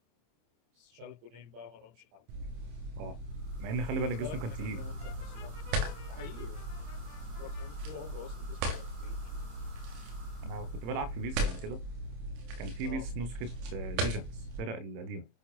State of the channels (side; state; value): left; late; 26 ms